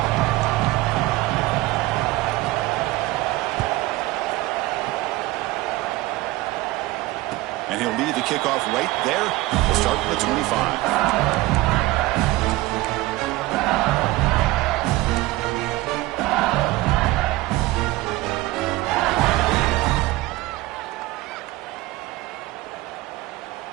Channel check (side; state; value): left; quieter; 18.9 dB